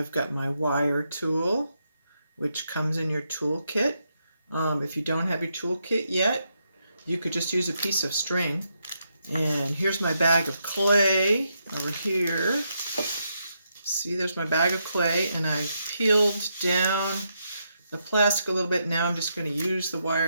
got my wire tool, which comes in your tool kit. If you don't have your tool kit yet, you could just use a piece of string. And here's my bag of clay over here. See, there's my bag of clay, and I've peeled down the plastic a little bit. Now I'm just going to use the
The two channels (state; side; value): inverted; both; correlation -0.81